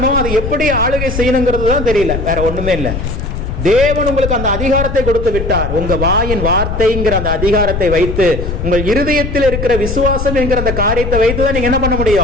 அதை எப்படி ஆளுகை செய்யணுங்கிறது தான் தெரியல, வேற ஒண்ணுமே இல்லை. தேவன் உங்களுக்கு அந்த அதிகாரத்தை கொடுத்து விட்டார். உங்க வாயின் வார்த்தைங்கிற அந்த அதிகாரத்தை வைத்து, உங்கள் இருதயத்தில் இருக்கிற விசுவாசம் என்கிற அந்த காரியத்தை வைத்து தான் நீங்க என்ன பண்ண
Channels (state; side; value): noise; left; rumble, 4 dB below the sound